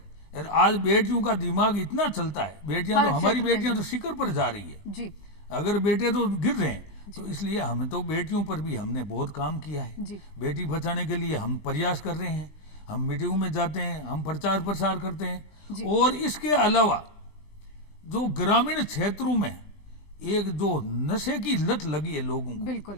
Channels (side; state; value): right; late; 20 ms